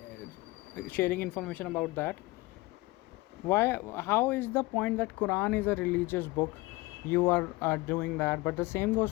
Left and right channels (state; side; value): quieter; right; 21.7 dB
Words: sharing information about that. Why? How is the point that Quran is a religious book? You are doing that, but the same goes